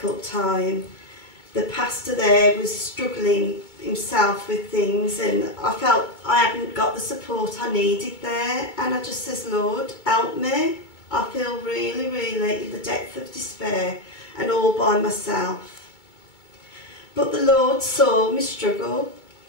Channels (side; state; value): right; late; 2.2 ms